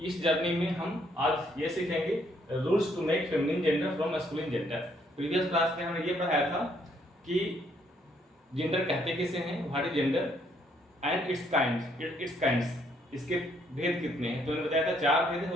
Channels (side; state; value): both; normal; correlation 0.69